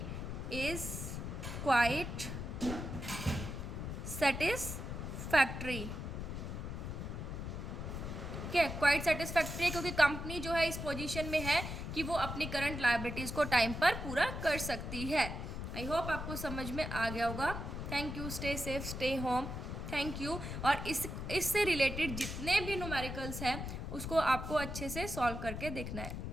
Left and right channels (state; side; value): noise; left; rumble, 5 dB below the sound